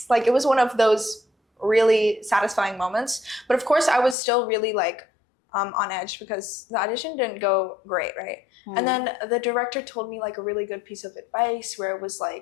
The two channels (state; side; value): drops out; right; at 4.2 s